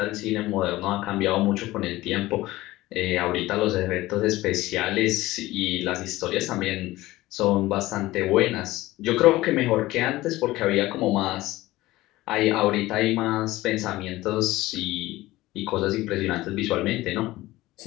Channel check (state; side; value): quieter; right; 17.8 dB